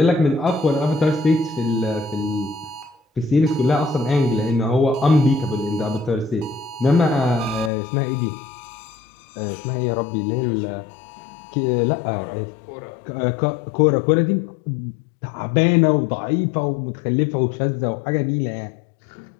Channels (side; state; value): right; drops out; at 7.7 s